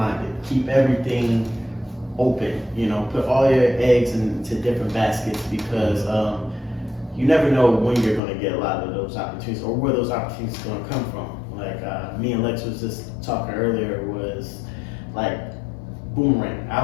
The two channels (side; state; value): right; drops out; at 8.2 s